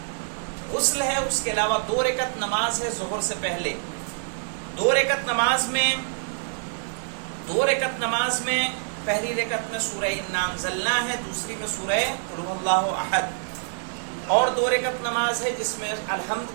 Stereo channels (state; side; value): silent; left; digital silence